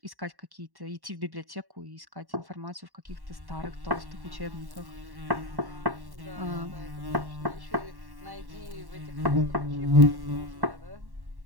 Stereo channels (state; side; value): late; left; 1.1 ms